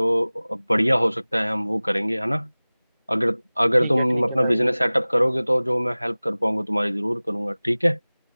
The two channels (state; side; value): inverted; both; correlation -0.99